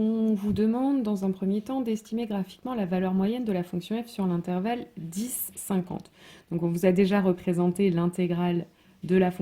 vous demande dans un premier temps d'estimer graphiquement la valeur moyenne de la fonction f sur l'intervalle 10-50. Donc on vous a déjà représenté l'intégrale de la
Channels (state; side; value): identical; both; correlation 1.00